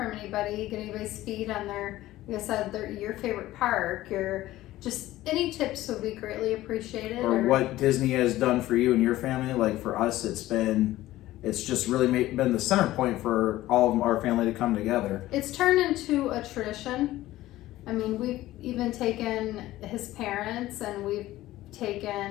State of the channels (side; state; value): right; quieter; 15.8 dB